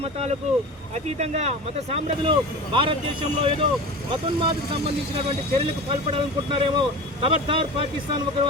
మతాలకు అతీతంగా మత సామ్రాజ్యులు భారతదేశంలో ఏదో మతోన్మాదకు సంబంధించినటువంటి చర్యలకు పాల్పడాలనుకుంటున్నారేమో. ఖబర్దార్ పాకిస్తాన్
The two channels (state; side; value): normal; both; correlation 0.32